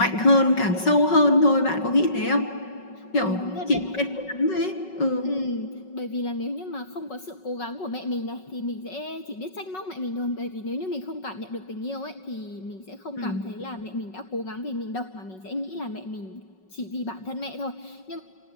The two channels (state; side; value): late; right; 5.4 ms